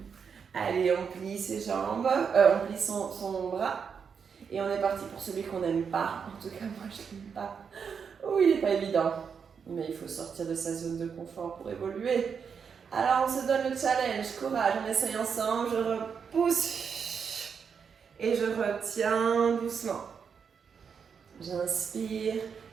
Allez, on plie ses jambes, on plie son bras. Et on est parti pour celui qu'on n'aime pas. En tout cas, moi, je l'aime pas. Oh, il n'est pas évident. Mais il faut sortir de sa zone de confort pour évoluer. Alors, on se donne le challenge. Courage, on essaye ensemble. Je repousse. Et je retiens doucement. J'inspire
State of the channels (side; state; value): left; quieter; 6.5 dB